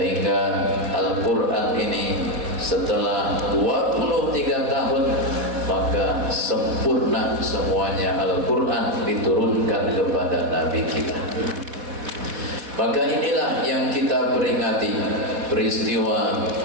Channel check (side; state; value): left; late; 4.1 ms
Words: Al-Quran ini setelah 23 tahun maka sempurna semuanya. Al-Quran diturunkan kepada Nabi kita. Maka inilah yang kita peringati, peristiwa